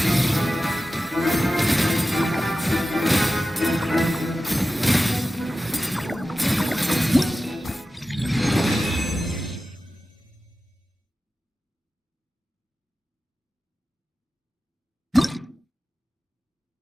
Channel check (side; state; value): both; normal; correlation 0.94